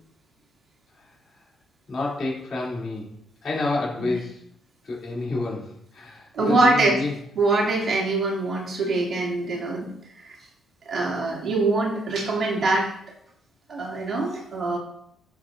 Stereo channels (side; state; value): both; normal; correlation 0.73